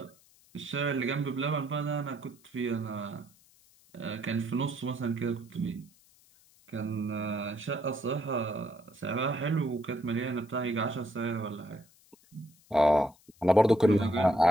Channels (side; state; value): left; noise; hiss, 29 dB below the sound